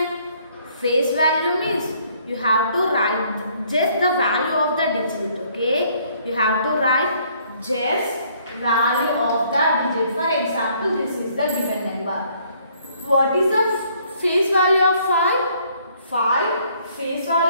Face value means you have to write just the value of the digit. Okay, you have to write just value of the digit. For example, this is the given number. What is the face value of 5? 5. Face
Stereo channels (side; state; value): both; inverted; correlation -0.64